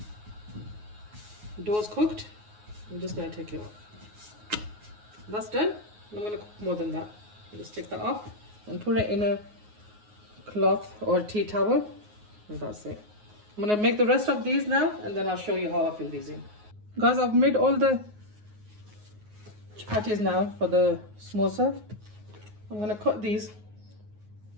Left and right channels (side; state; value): left; late; 9.5 ms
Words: dough's cooked, I'm just going to take it off. That's done. I'm going to cook more than that. Just take that off and put it in a cloth or tea towel. And that's it. I'm going to make the rest of these now, and then I'll show you how I fill these in. Guys, I've made all the chapatis now for the samosa. I'm going to cut these